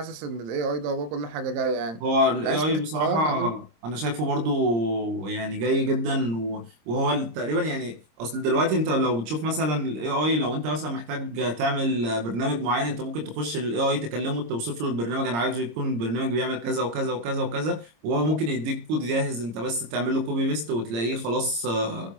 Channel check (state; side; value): late; left; 26 ms